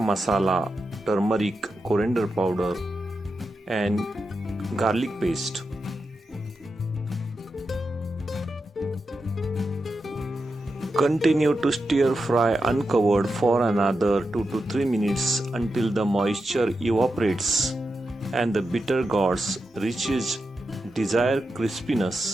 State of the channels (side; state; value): both; normal; correlation 0.88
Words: turmeric, coriander powder and garlic paste. Continue to stir fry uncovered for another 2 to 3 minutes until the moisture evaporates and the Bittergourd reaches desired